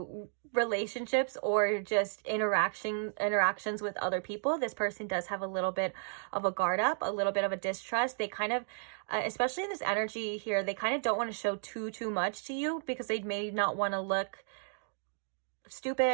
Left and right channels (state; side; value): silent; left; digital silence